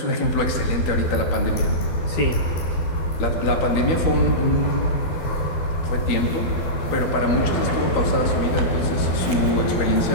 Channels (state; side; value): late; right; 12 ms